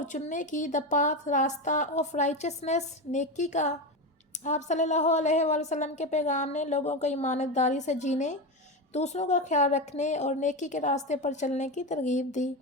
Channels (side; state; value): both; normal; correlation 0.17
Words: چننے کی، دا پاتھ راستہ، آف رائچسنس نیکی کا۔ آپ صلی اللہ علیہ وآلہ وسلم کے پیغام نے لوگوں کو ایمانت داری سے جینے، دوسروں کا خیال رکھنے اور نیکی کے راستے پر چلنے کی ترغیب دی۔